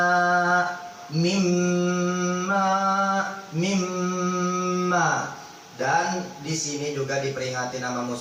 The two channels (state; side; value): identical; both; correlation 1.00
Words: mimma. Dan di sini juga diperingati nama